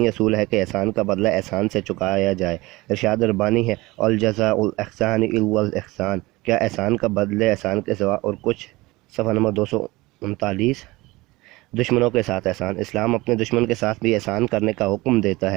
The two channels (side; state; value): left; quieter; 21.1 dB